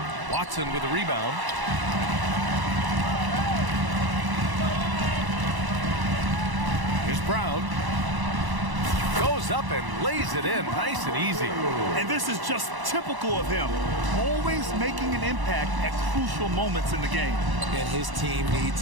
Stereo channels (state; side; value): late; left; 1.0 ms